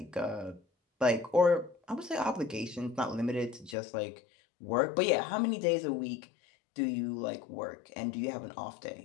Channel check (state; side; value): drops out; right; at 3.8 s